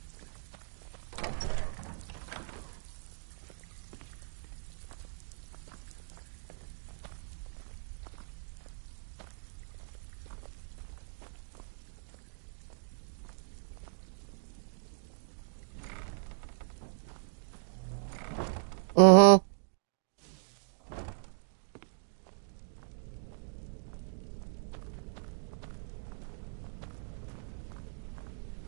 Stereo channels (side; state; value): left; silent; digital silence